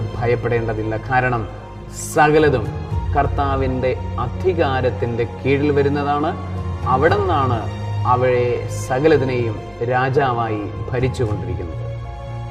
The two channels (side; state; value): both; identical; correlation 1.00